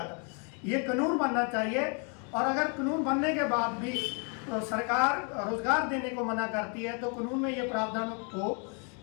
ये कानून बनना चाहिए। और अगर कानून बनने के बाद भी सरकार रोजगार देने को मना करती है तो कानून में ये प्रावधान हो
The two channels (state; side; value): quieter; right; 37.9 dB